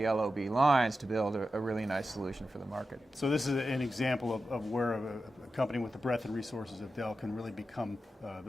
LOB lines to build a really nice solution for the market. So this is an example of where a company with the breadth and resources of Dell can really become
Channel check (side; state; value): both; normal; correlation 0.91